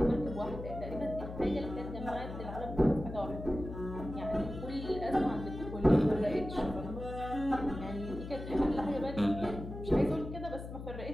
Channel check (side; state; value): left; noise; hum, 9 dB below the sound